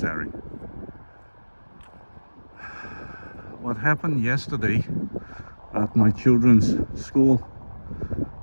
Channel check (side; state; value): both; inverted; correlation -1.00